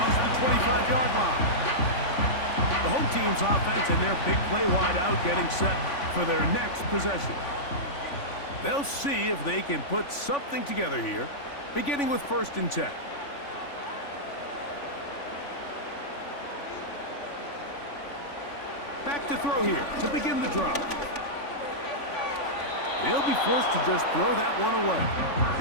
the 25-yard line. The home team's offense and their big play wide out getting set for their next possession. They'll see if they can put something together here, beginning with 1st and 10. Back to throw here to begin the drive. They'll be forced to just throw that one away.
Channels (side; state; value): right; late; 3.5 ms